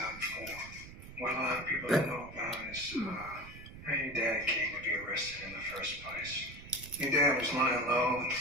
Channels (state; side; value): noise; right; rumble, 15 dB below the sound